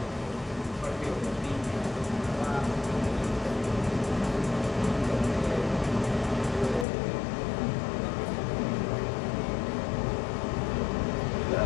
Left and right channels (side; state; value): right; drops out; at 6.9 s